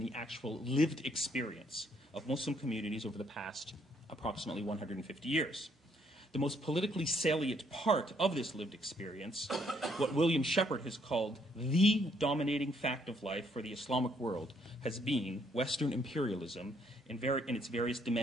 the actual lived experience of Muslim communities over the past approximately 150 years. The most politically salient part of this lived experience, what William Shepard has called the dominating fact of life for the Islamic world, has been Western imperialism in its various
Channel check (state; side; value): normal; both; correlation 0.69